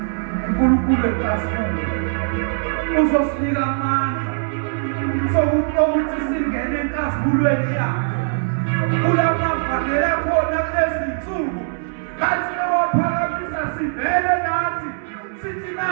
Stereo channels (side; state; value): left; silent; 65 dB below the other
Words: uNkulunkulu enkasini uzosinika amandla sokuthi singene enkazimulweni yakhe. Kulamavangeli akhona kulezi nsuku kathi ewaphakamisa sivele ngathi sithi